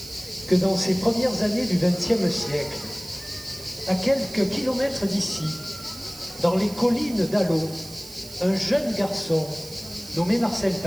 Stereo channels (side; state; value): right; noise; hiss, 16 dB below the sound